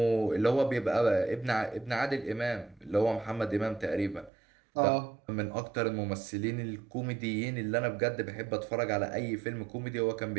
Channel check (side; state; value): left; drops out; at 4.3 s